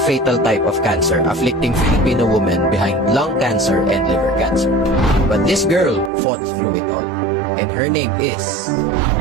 fatal type of cancer afflicting Filipino women behind lung cancer and liver cancer. But this girl fought through it all. And her name is...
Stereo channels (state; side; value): drops out; left; at 6.1 s